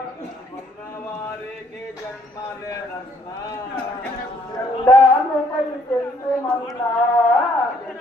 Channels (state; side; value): normal; both; correlation 0.65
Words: వారికి జన్మలేదన్నా జెండానుపై చెందుమన్నా